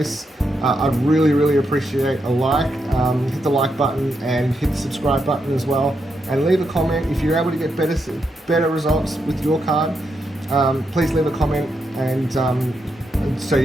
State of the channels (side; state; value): both; normal; correlation 0.82